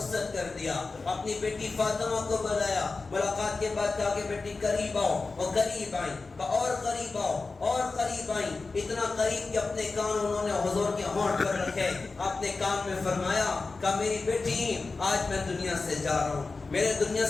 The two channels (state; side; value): quieter; right; 3.9 dB